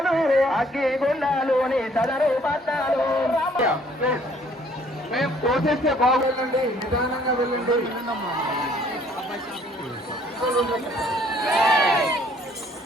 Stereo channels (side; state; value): both; normal; correlation 0.60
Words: అగ్ని గుండాలు నీ సమరూపాదాలు మేము పోసేస్తే బాగా వెళ్ళండి, నిదానంగా వెళ్ళండి.